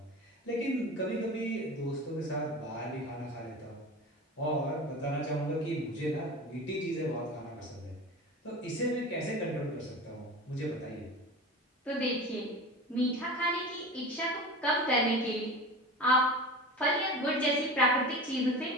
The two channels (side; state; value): both; normal; correlation 0.32